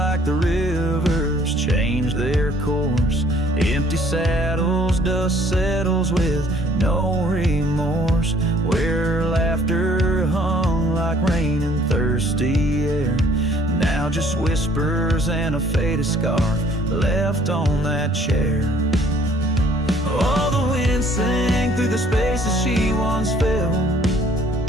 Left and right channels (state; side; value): normal; both; correlation 0.59